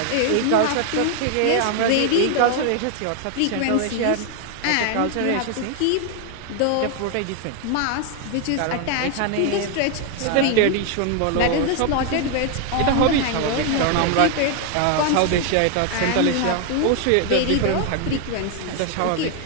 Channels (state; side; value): different; both; correlation 0.00